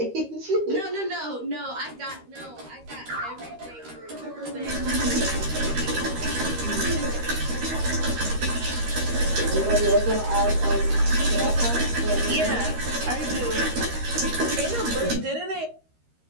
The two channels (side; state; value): left; late; 13 ms